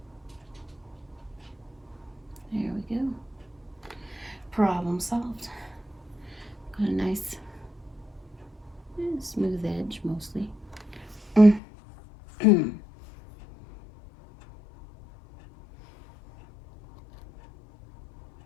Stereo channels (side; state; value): right; drops out; at 11.6 s